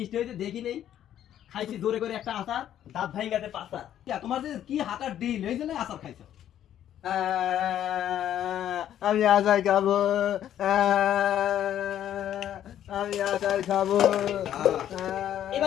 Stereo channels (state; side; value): quieter; right; 10.9 dB